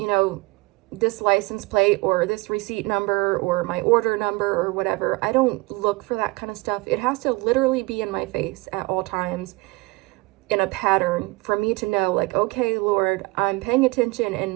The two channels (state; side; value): quieter; left; 23.8 dB